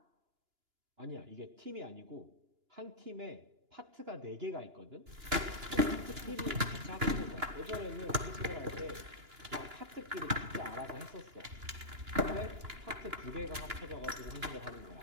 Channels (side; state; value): left; late; 2.9 ms